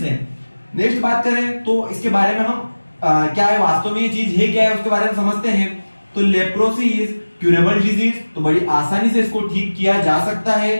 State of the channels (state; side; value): inverted; both; correlation -1.00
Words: हैं। नेक्स्ट बात करें तो इसके बारे में हम क्या है, वास्तव में ये चीज है क्या है, उसके बारे में समझते हैं। तो लेप्रोसी इज क्यूरेबल डिजीज, तो बड़ी आसानी से इसको ठीक किया जा सकता है।